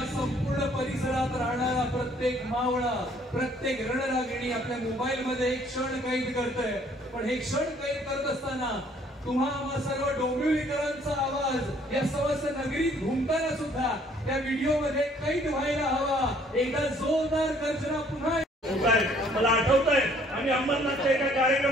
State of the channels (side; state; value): both; normal; correlation 0.61